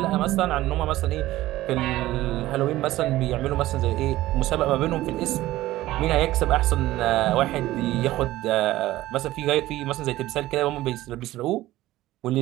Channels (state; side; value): quieter; left; 16.1 dB